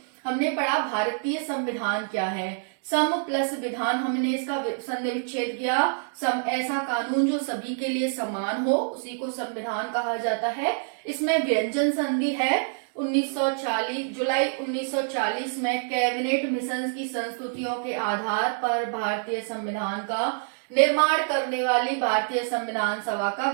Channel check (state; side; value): silent; left; digital silence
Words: हमने पढ़ा भारतीय संविधान क्या है। सम प्लस विधान, हमने इसका संधि विच्छेद किया। सम ऐसा कानून जो सभी के लिए समान हो, उसी को संविधान कहा जाता है। इसमें व्यंजन संधि है 1940 जुलाई 1940 में कैबिनेट मिशन की संस्तुतियों के आधार पर भारतीय संविधान का निर्माण करने वाली भारतीय संविधान सभा का